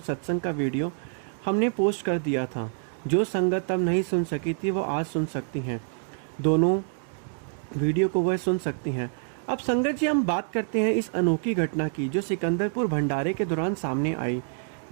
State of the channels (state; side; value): silent; left; digital silence